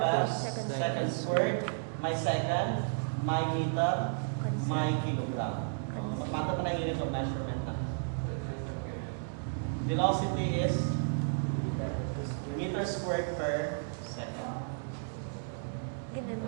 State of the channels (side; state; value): left; silent; digital silence